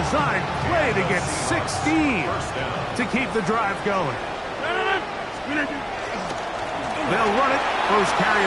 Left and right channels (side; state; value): both; identical; correlation 1.00